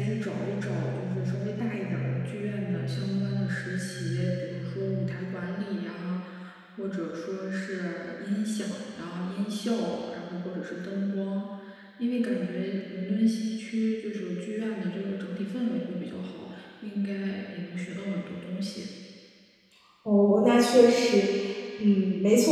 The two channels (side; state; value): both; identical; correlation 1.00